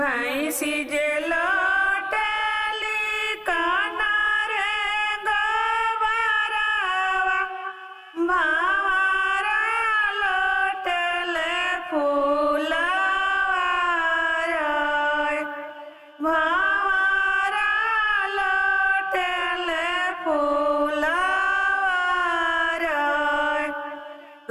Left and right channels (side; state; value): both; identical; correlation 1.00